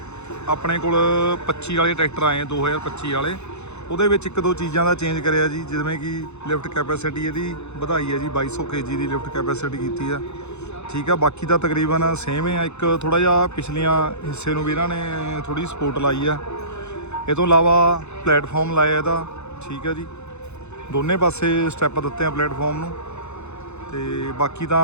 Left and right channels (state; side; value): late; right; 0.81 ms